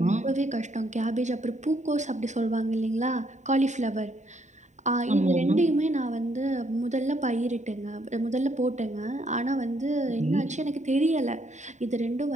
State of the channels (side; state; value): left; late; 0.34 ms